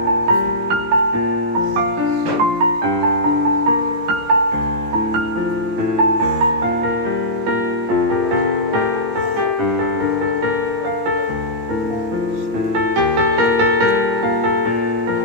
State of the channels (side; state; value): left; late; 18 ms